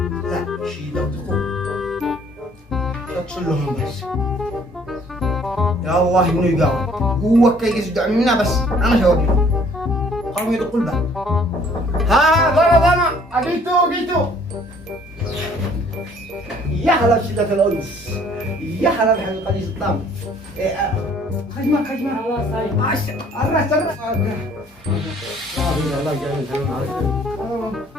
لا شي لو تقول اتصل لهم بس يا الله انه يقاوم هو كي يصدع منا بس انا شوقي قاموا يدقوا الباب ها ضرب انا جيتو يا هلا بشدة الأنس يا هلا بحلقة قديس الطعم خجمة الله صايب الرأس الله يجعل الحلم عليك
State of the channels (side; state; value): both; normal; correlation 0.58